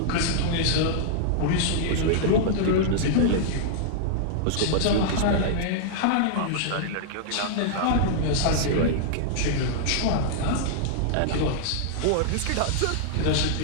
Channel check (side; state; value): both; different; correlation -0.01